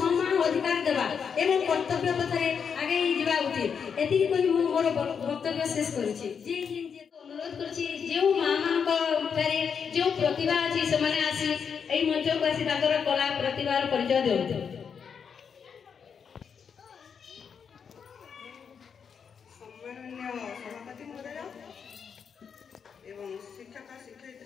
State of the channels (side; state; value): right; quieter; 6.7 dB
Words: अधिकार देवा एवं कर्तव्य पथरे आगे जीवा उचित एति कोइ मु मोर वक्तव्य शेष करूची। जे अनुरोध करूची जे मां मान को जो प्रतिभा अछि से माने आसी एई मंच को आसी ताकर कला प्रतिभार परिचय देउते। सम्माननीय सभापति महोदय एवं शिक्षक